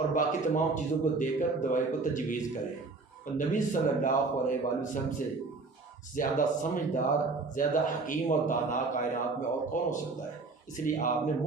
باقی تمام چیزوں کو دے کر دوائی کو تجویز کرے. اور نبی صلی اللہ علیہ وآلہ وسلم سے زیادہ سمجھدار، زیادہ حکیم اور دانا کائنات میں اور کون ہو سکتا ہے. اس لیے آپ نے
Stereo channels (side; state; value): left; quieter; 3.8 dB